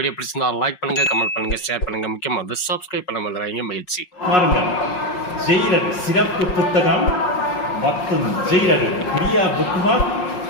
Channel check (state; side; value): late; right; 5.5 ms